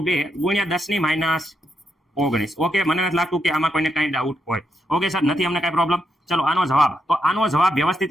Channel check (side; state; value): both; normal; correlation 0.81